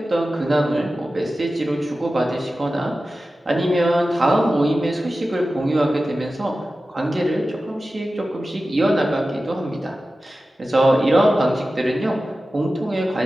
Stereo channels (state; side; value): normal; both; correlation 0.94